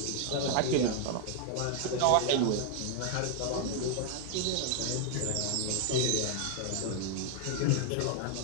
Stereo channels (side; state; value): both; different; correlation 0.00